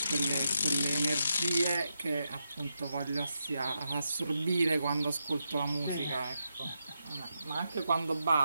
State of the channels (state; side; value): inverted; both; correlation -0.85